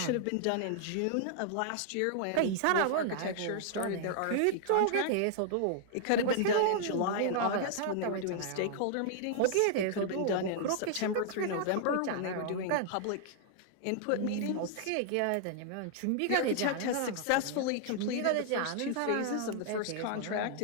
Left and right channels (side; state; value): both; different; correlation -0.01